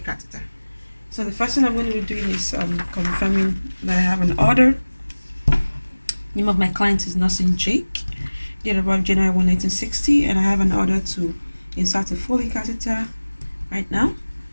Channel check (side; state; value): both; inverted; correlation -1.00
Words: So the first thing I'm going to be doing is confirming that I have an order. Name of my client is Nursing Jake. Date of birth January 1, 1960, and I have an order to insert a Foley catheter right now